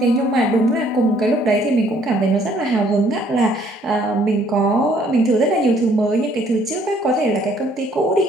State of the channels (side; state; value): both; normal; correlation 0.62